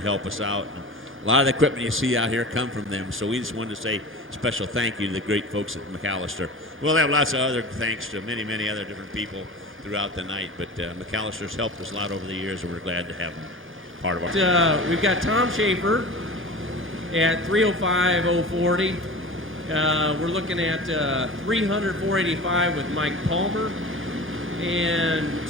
us out. And a lot of the equipment you see out here come from them, so we just wanted to say special thank you to the great folks at McAllister. We'll have lots of other thanks to many, many other different people throughout the night, but McAllister's helped us a lot over the years, and we're glad to have them part of our We've got Tom Schaefer at 305-040. We're looking at 300, 485 with Mike Palmer, and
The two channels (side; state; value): both; normal; correlation 0.34